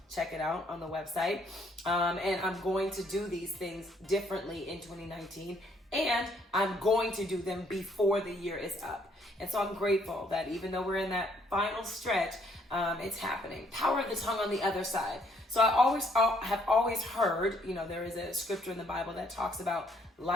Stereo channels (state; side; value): normal; both; correlation 0.67